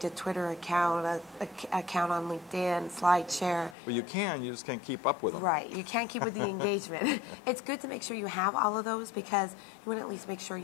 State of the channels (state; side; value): drops out; right; at 3.8 s